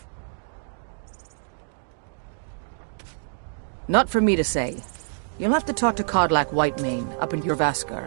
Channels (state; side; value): silent; left; digital silence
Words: Not for me to say. You'll have to talk to Kodlak Whitemane up in